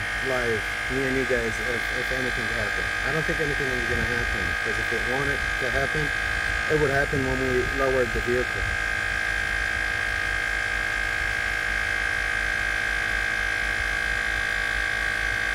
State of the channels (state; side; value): identical; both; correlation 1.00